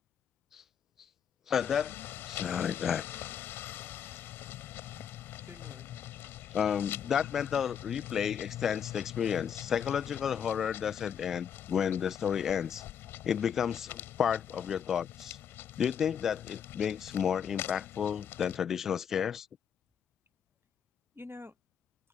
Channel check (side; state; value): right; quieter; 8.0 dB